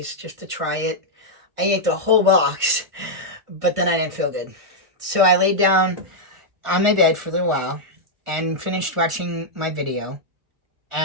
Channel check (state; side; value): late; left; 1.5 ms